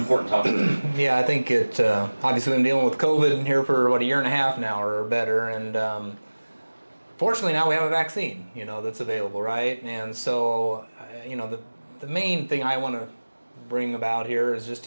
topic. Yeah, I think it, obviously we've been dealing with COVID here for, what, a year and a half now or better, and fortunately now we have a vaccine, that's available, right? And so, the main thing I want to bring about here is just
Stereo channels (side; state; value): both; inverted; correlation -1.00